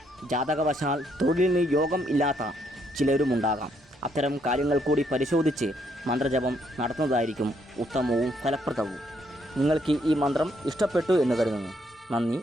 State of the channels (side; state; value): both; normal; correlation 0.72